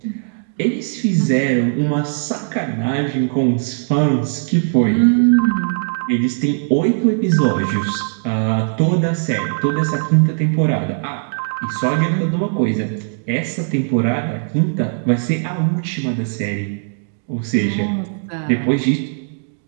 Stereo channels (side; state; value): left; silent; digital silence